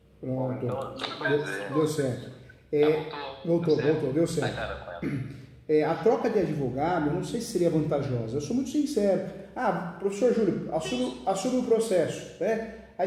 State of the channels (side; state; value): both; identical; correlation 1.00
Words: Pronto, deu certo. Voltou, deu certo. A troca de advogado, eu não sei se seria vantajosa. Eu sou muito sincero. Professor Júlio, assume o processo, né? Aí